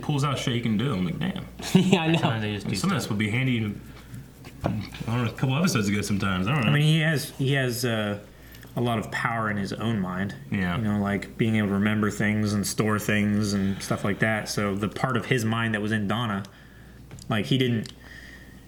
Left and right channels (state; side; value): identical; both; correlation 1.00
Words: pulls out shit he can do. I'm damn. Yeah, I know. Sometimes this would be handy. I don't know, a couple episodes ago. Sometimes I don't know. He has a lot of power in his own mind. Yeah. Being able to remember things and store things and stuff like that. So the part of his mind that was in Donna, he didn't